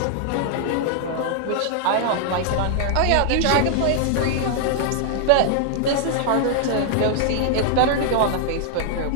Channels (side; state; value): both; different; correlation 0.00